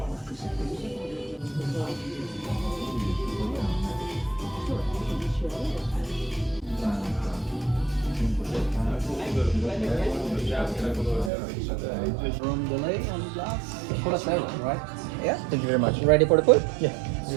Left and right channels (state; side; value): drops out; left; at 11.3 s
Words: From delay on glass. +7, right? Yeah. Thank you very much. Ready for the food? Yeah.